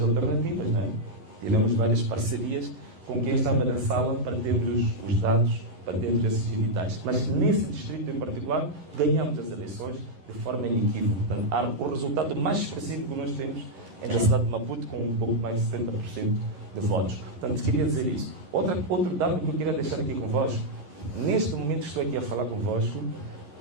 alternativas, não é? Tivemos várias parcerias com quem estava na sala para termos os dados, para termos esses editais. Mas nesse distrito em particular, ganhamos as eleições de forma inequívoca. Portanto, o resultado mais expressivo que nós temos é da cidade de Maputo, com um pouco mais de 70% de votos. Portanto, queria dizer isso. Outro dado que eu queria deixar aqui convosco, neste momento que estou aqui a falar convosco,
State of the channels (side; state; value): left; late; 11 ms